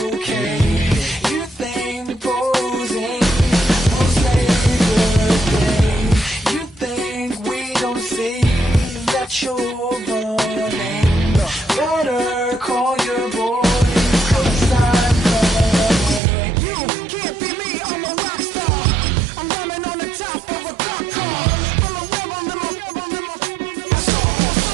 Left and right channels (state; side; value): drops out; left; at 16.2 s